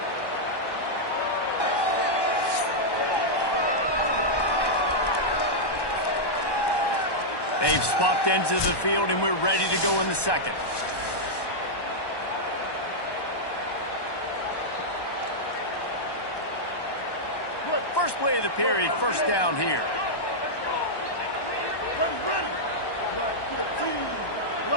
They've swapped ends of the field, and we're ready to go in the second. First play of the period, first down here.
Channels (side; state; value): right; late; 1.1 ms